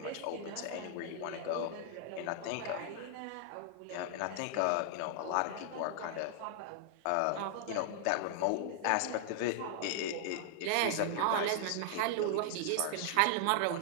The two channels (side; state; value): both; different; correlation 0.00